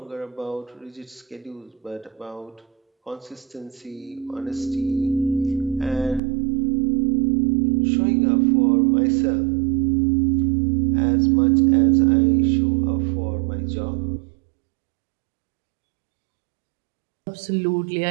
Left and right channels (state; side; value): drops out; left; at 6.2 s